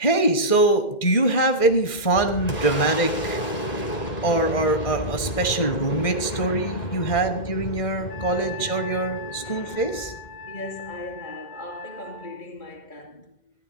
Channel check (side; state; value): right; late; 2.1 ms